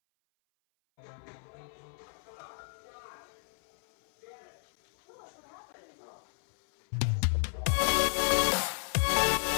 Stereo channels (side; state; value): right; silent; 56 dB below the other